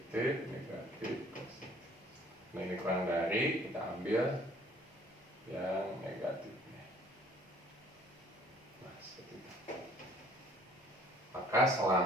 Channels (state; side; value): normal; both; correlation 0.56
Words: negatif, positif. Nah, ini kurang dari, kita ambil yang negatifnya. Nah, seperti itu. Maka